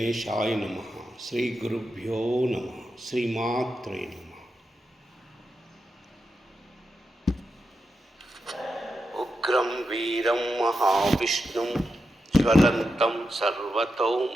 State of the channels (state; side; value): normal; both; correlation 0.87